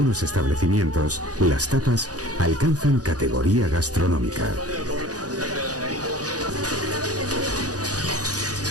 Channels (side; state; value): left; late; 0.67 ms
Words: establecimientos, las tapas alcanzan categoría gastronómica.